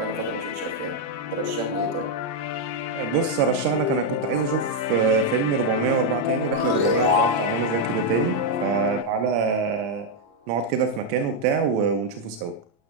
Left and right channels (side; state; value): left; late; 35 ms